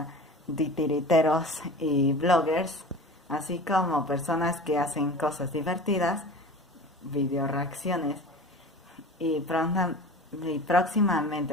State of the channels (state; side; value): normal; both; correlation 0.36